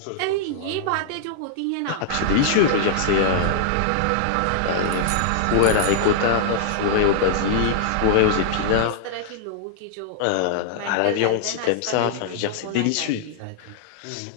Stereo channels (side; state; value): both; different; correlation -0.01